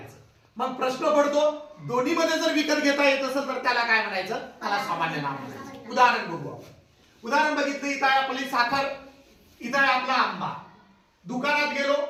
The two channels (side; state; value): both; identical; correlation 1.00